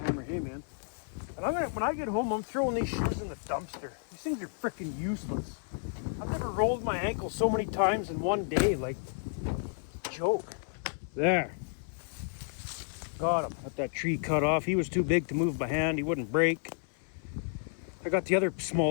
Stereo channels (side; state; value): right; silent; 57 dB below the other